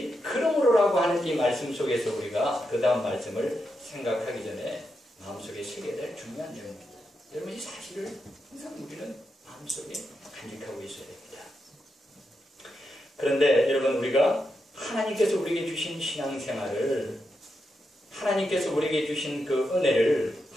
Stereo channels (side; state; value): both; normal; correlation 0.85